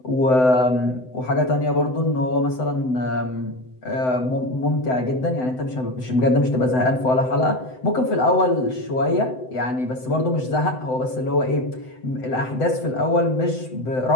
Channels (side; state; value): right; late; 7.9 ms